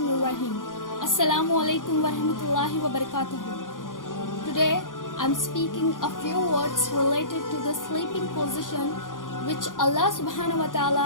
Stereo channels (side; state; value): right; late; 0.89 ms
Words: रहीम अस्सलामु अलैकुम व रहमतुल्लाहि व बरकातुहू. Today I am speaking a few words related to the sleeping position which Allah subhanahu wa ta'ala